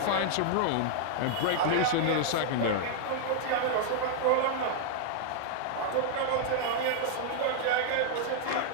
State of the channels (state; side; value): different; both; correlation -0.01